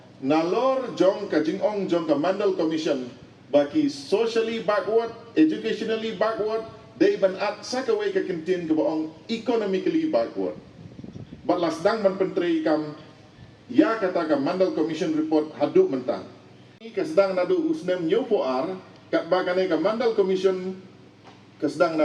nalor jong ka jingong jong ka Mandal Commission baki socially backward, educationally backward, day ban at sa kawai ka kintin ka baong economically backward. But lasdang man pentri kam ya kata ka Mandal Commission report haduk mentang. Kasdang nadu usnem nyopoar kat bagane ka Mandal Commission kasdang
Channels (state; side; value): identical; both; correlation 1.00